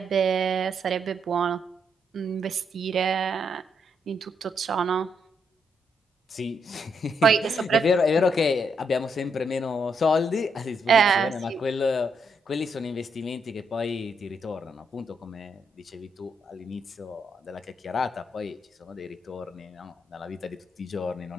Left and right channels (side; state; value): both; normal; correlation 0.78